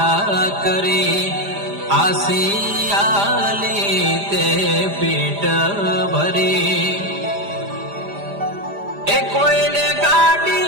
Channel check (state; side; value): late; left; 5.0 ms